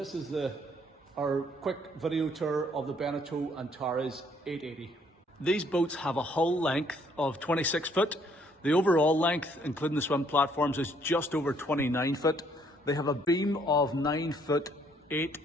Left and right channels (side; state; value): both; normal; correlation 0.66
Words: is our quick video tour of the Beneteau Antares 8.80. These boats have a hull length of 26 foot. The overall length, including the swim platforms, is just over 29 foot. They have a beam of 9 foot 8